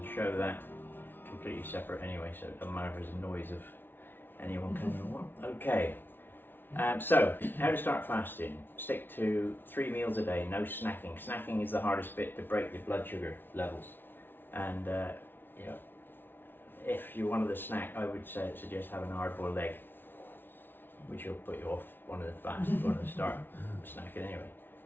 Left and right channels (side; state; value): right; late; 0.10 ms